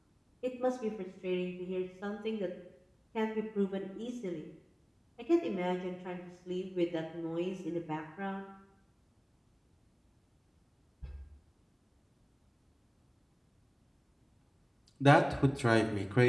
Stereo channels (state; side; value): identical; both; correlation 1.00